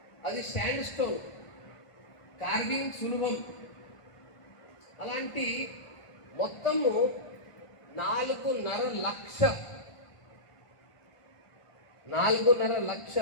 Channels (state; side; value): late; right; 1.5 ms